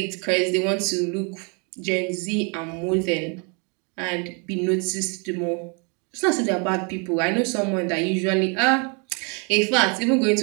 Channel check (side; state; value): left; quieter; 34.4 dB